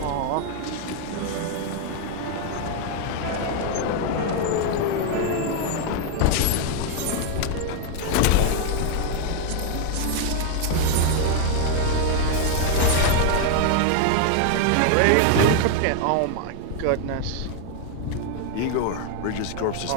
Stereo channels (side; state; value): both; different; correlation 0.00